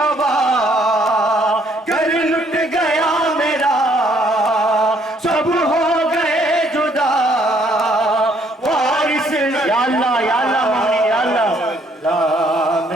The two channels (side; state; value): both; normal; correlation 0.66